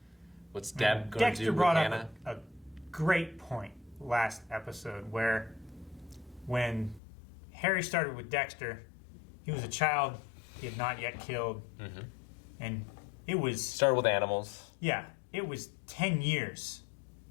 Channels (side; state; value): right; drops out; at 7.0 s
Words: What's Deb going to Dexter do with brought Hannah? up a great point last episode where when Harry started with Dexter, he was a child he had not yet killed. And it was... Started with animals. Yeah, it was 10 years